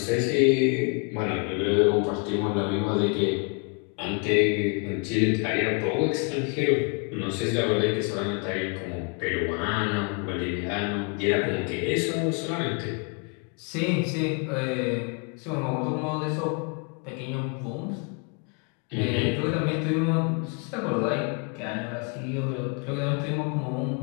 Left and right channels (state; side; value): quieter; right; 35.2 dB